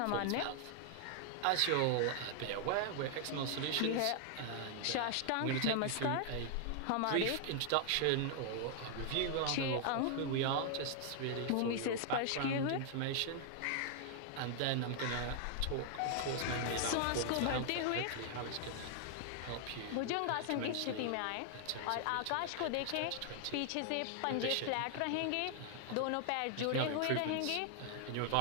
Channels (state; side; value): different; both; correlation 0.00